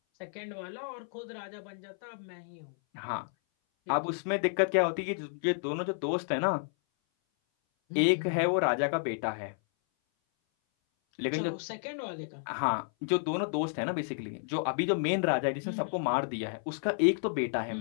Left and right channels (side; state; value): right; silent; 57 dB below the other